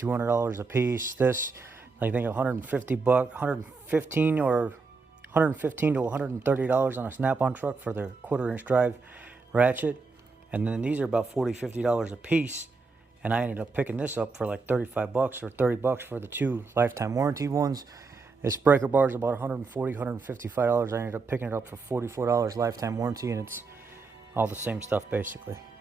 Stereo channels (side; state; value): left; quieter; 4.2 dB